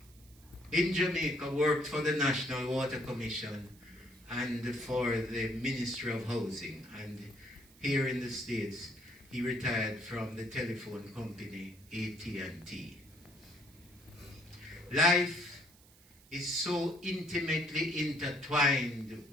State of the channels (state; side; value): noise; right; hiss, 26 dB below the sound